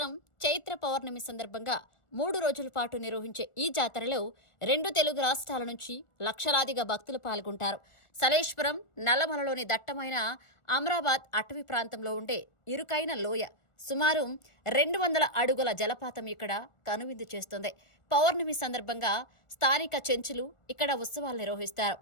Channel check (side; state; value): right; late; 1.4 ms